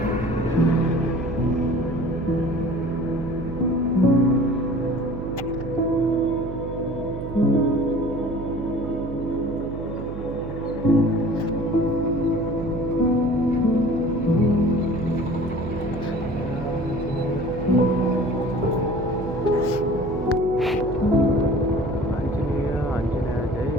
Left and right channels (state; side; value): noise; right; hum, 8 dB below the sound